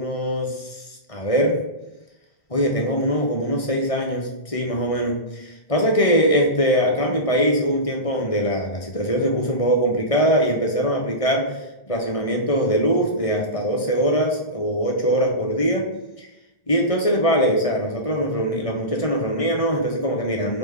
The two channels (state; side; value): late; right; 1.6 ms